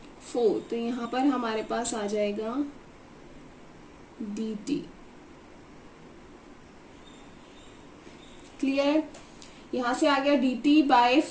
4. तो यहाँ पर हमारे पास आ जाएगा dt. क्लियर? यहाँ से आ गया dt बाय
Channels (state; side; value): identical; both; correlation 1.00